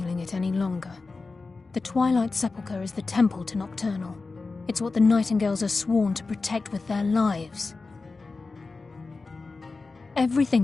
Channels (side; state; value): right; quieter; 3.9 dB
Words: it any longer. The Twilight Sepulchre is the temple to Nocturnal. It's what the Nightingales are sworn to protect with their lives.